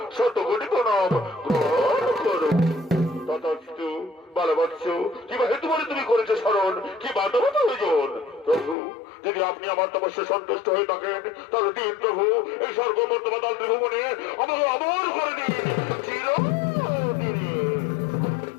শত কোটি প্রণাম গ্রহণ করুন। তথাস্তু বলবৎস কিবা হেতু বলে তুমি করেছে শরণ, কি বাধব প্রয়োজন? প্রভু যদি আপনি আমার তপস্যায় সন্তুষ্ট হয়ে থাকেন তাহলে দিন প্রভু এই স্বর্গমর্তমাতাল ত্রিভুবনে আমাকে অমর করে দিন চিরদিনে।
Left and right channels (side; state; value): right; drops out; at 8.8 s